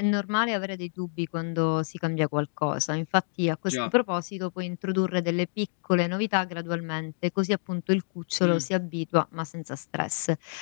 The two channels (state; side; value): silent; right; digital silence